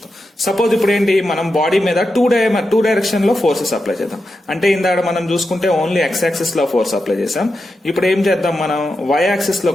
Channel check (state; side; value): normal; both; correlation 0.88